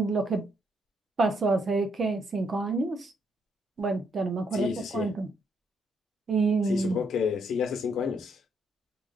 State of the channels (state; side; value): normal; both; correlation 0.73